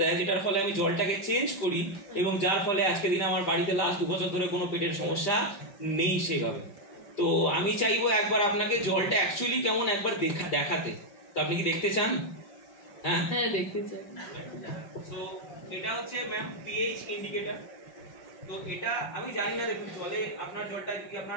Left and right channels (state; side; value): late; right; 5.1 ms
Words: দেয়, যেটার ফলে আমি জলটাকে চেঞ্জ করি, এবং যার ফলে আজকে দিনে আমার বাড়িতে লাস্ট 2 বছর ধরে কোনো পেটের সমস্যা নেই সেভাবে। তো আমি চাইবো একবার আপনাকে জলটা অ্যাকচুয়ালি কেমন একবার দেখাতে। তো আপনি কি দেখতে চান? হ্যাঁ দেখতে চাই। তো এটা হচ্ছে ম্যাম পিএইচ ইন্ডিকেটর। তো এটা আমি জানি না, দেখুন জলে আপনার জলটা যদি